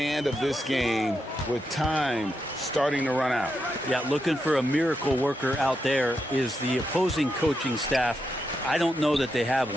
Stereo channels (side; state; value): both; normal; correlation 0.84